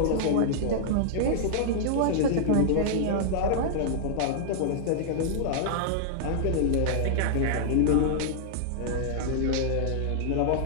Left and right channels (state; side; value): different; both; correlation -0.01